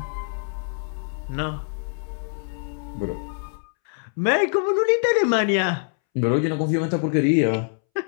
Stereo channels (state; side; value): silent; right; 62 dB below the other